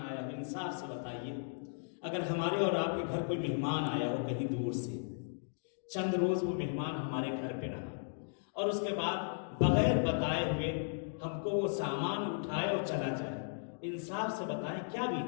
آیا ہو, انصاف سے بتائیے, اگر ہمارے اور آپ کے گھر کوئی مہمان آیا ہو کہیں دور سے, چند روز وہ مہمان ہمارے گھر پہ رہا اور اس کے بعد بغیر بتائے ہوئے ہم کو وہ سامان اٹھائے اور چلا جائے, انصاف سے بتائیں کیا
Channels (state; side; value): silent; right; digital silence